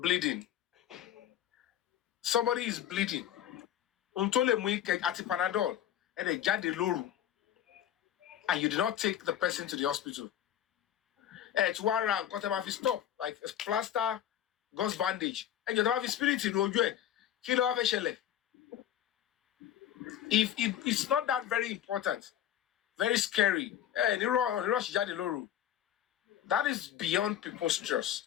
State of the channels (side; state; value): right; quieter; 11.0 dB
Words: somebody is bleeding. Untole muike ati Panadol and a jade loru, and you did not take the person to the hospital. It's one round, got him off his stop, like a plaster, gauze bandage, and you don't have his spirit in Ojo. Kilo have a shell. If it's not that very important, very scary. That is beyond people's trust.